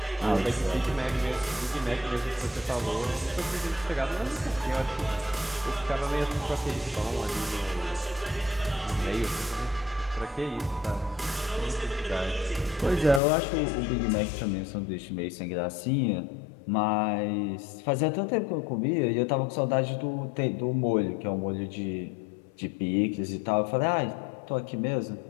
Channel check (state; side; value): drops out; right; at 13.2 s